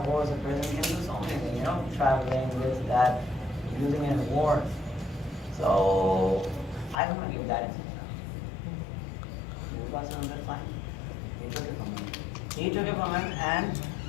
horse a person can do so many things, traveling, this, that, using it in war. So I don't want to give that in sadaqah. Nabi Pak sallallahu alaihi wasallam said, fine. He took it from him. He took it from him, and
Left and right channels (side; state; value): right; drops out; at 7.0 s